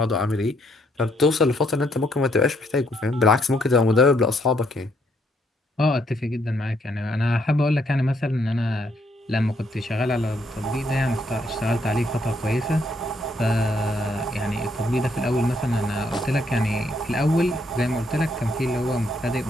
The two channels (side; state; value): both; normal; correlation 0.72